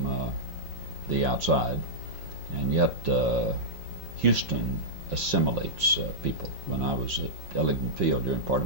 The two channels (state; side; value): late; left; 5.6 ms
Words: the outside, and yet Houston assimilates people. When I was at Ellington Field during part